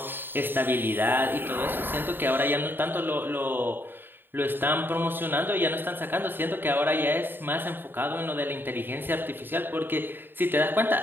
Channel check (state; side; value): late; left; 0.096 ms